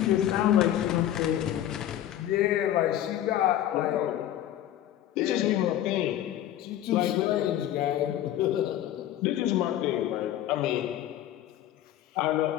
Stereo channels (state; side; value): quieter; right; 12.3 dB